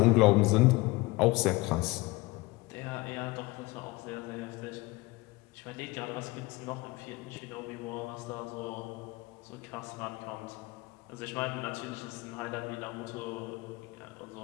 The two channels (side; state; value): right; quieter; 22.3 dB